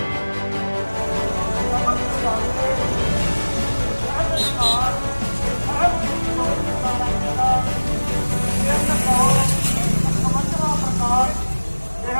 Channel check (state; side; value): inverted; both; correlation -1.00